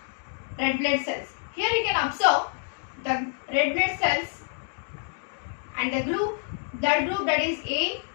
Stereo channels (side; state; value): right; silent; 58 dB below the other